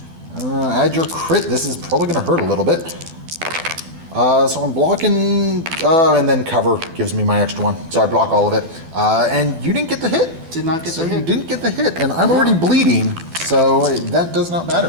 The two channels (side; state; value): left; late; 12 ms